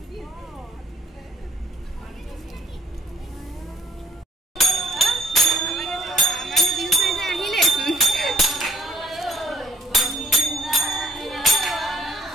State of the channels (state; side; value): normal; both; correlation 0.59